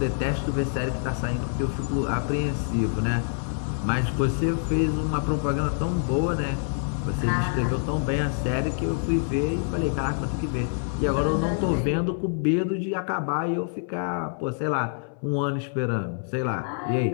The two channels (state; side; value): silent; right; 61 dB below the other